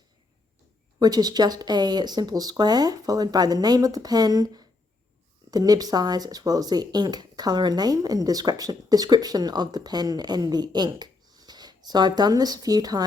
which is just a simple square followed by the name of the pen, the nib size, as well as the ink color and name, and description of the pen and the ink. So I've done this a few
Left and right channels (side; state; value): right; quieter; 3.4 dB